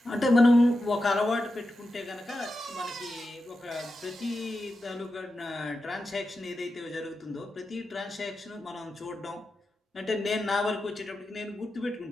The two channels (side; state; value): both; normal; correlation 0.90